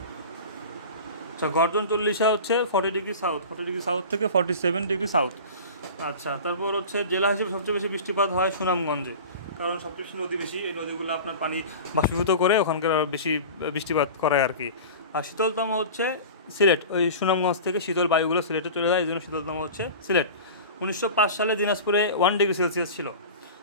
আচ্ছা, গর্জন 40 হচ্ছে 40 ডিগ্রি সাউথ থেকে 47 ডিগ্রি সাউথ। আচ্ছা, তারপর হচ্ছে জেলা হিসেবে সবচেয়ে বেশি বৃষ্টিপাত হয় সুনামগঞ্জে, কারণ সবচেয়ে বেশি নদী বেশি, এই নদীগুলো আপনার পানি বাষ্পীভূত করে ওখানকার বেশি বৃষ্টিপাত করায় আর কি। আর শীতলতম হচ্ছে সিলেট, ওই সুনামগঞ্জ থেকে শীতল বায়ুগুলো সিলেটে চলে যায়, এই জন্য শীতলতম হচ্ছে সিলেট। 1905 সালে দিনাজপুরে 1 ডিগ্রি সেলসিয়াস ছিল।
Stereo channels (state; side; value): inverted; both; correlation -0.34